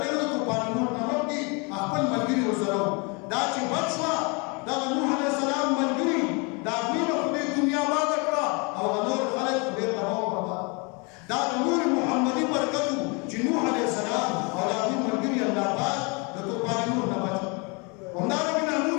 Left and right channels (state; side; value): quieter; right; 31.3 dB